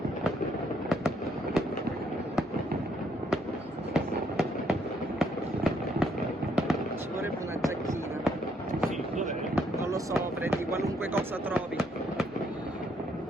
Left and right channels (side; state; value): both; normal; correlation 0.71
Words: Ci vorrebbe una giacchina. Sì, dov'è? Non lo so, prendi qualunque cosa trovi.